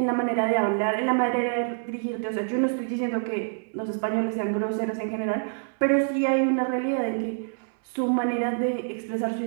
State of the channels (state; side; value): silent; left; 59 dB below the other